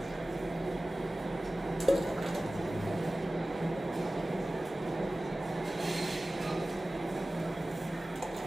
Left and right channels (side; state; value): both; normal; correlation 0.97